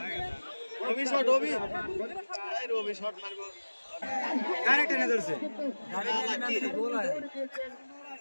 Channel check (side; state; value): both; inverted; correlation -1.00